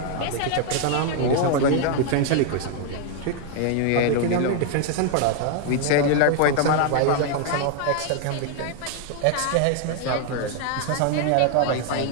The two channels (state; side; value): different; both; correlation 0.00